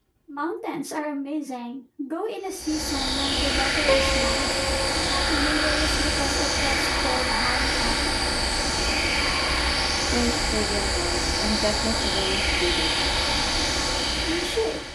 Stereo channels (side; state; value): both; identical; correlation 1.00